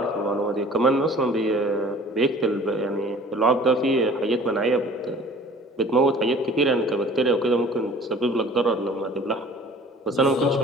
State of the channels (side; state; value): both; normal; correlation 0.48